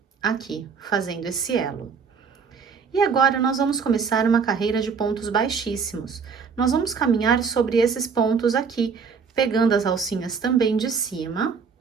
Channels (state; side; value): quieter; left; 5.8 dB